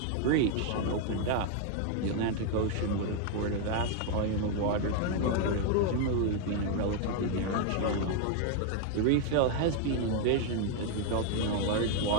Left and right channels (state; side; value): different; both; correlation 0.00